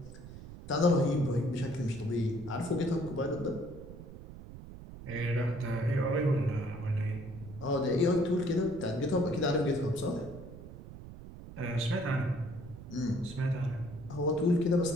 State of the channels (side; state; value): right; noise; rumble, 14 dB below the sound